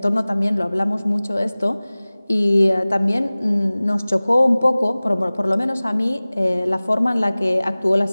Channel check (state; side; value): inverted; both; correlation -0.99